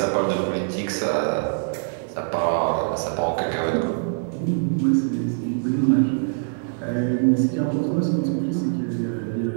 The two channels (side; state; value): left; silent; digital silence